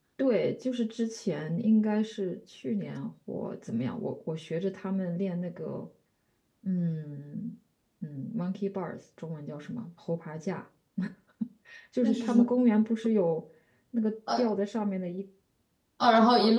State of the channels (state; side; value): identical; both; correlation 1.00